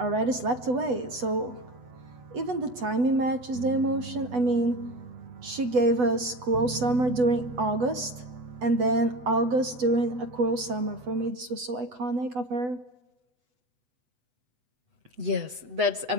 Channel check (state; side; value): late; left; 8.1 ms